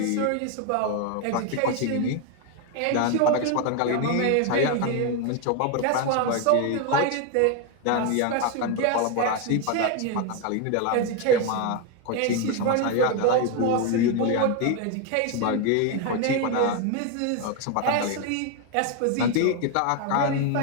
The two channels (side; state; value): both; different; correlation 0.02